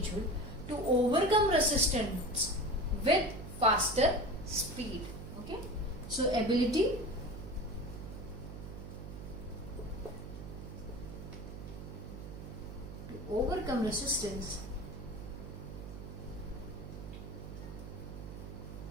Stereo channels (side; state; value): right; noise; hum, 10 dB below the sound